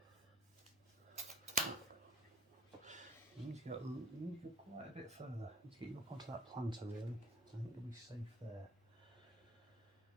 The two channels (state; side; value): normal; both; correlation 0.50